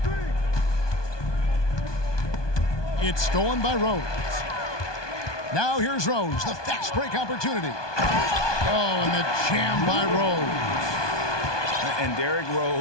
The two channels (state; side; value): late; right; 1.2 ms